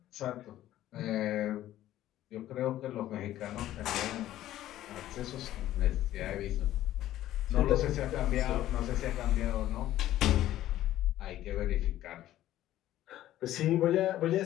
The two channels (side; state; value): right; quieter; 13.6 dB